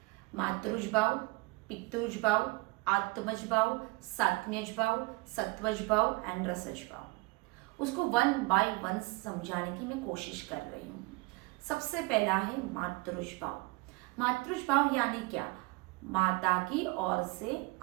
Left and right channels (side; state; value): left; quieter; 25.1 dB